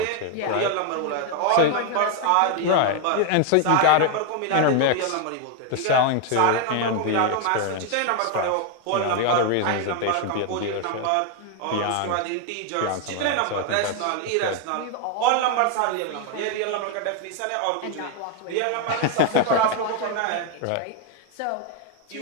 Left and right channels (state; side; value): different; both; correlation 0.01